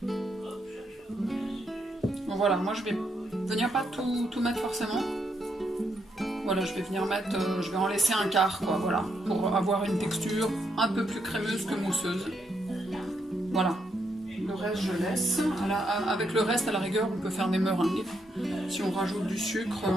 Bon voilà, moi je vais venir pas tout mettre forcément. Voilà, je vais venir mettre, je vais en laisser un quart, quoi, voilà, pour avoir une texture un peu plus crémeuse que mousseuse. Voilà. Le reste, je laisse. Avec le reste, à la rigueur, on peut faire des meringues. Si on rajoute du sucre,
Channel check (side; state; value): both; normal; correlation 0.78